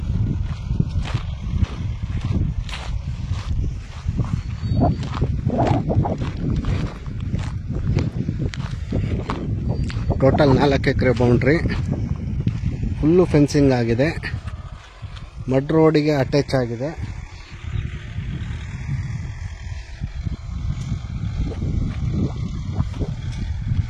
ಟೋಟಲ್ 4 ಎಕರೆ ಬೌಂಡ್ರಿ, ಫುಲ್ಲು ಫೆನ್ಸಿಂಗ್ ಆಗಿದೆ, ಮಡ್ ರೋಡಿಗೆ ಅಟ್ಯಾಚ್ ಆಗಿದೆ.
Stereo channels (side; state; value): both; identical; correlation 1.00